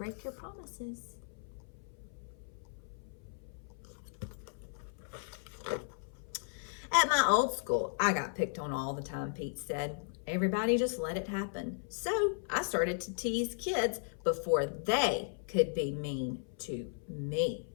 your promises. "At my old school, I got picked on all the time," Pete said. "Everybody just let it happen. So I started to tease kids before they could be mean to me."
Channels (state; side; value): silent; right; 54 dB below the other